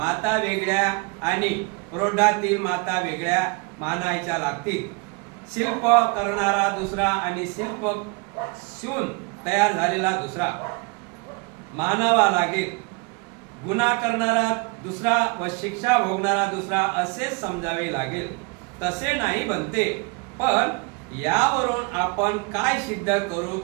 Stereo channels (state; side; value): quieter; left; 30.0 dB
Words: वेगळ्या आणि प्रौढातील माता वेगळ्या मानायच्या लागतील शिल्प करणारा दुसरा आणि शिल्प शिवून तयार झालेला दुसरा मानावा लागेल गुन्हा करणारा दुसरा व शिक्षा भोगणारा दुसरा असे समजावे लागेल तसे नाही बनते पण यावरून आपण काय सिद्ध करू